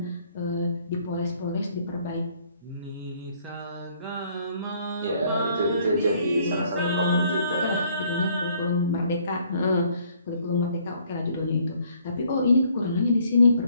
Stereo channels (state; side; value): inverted; both; correlation -0.63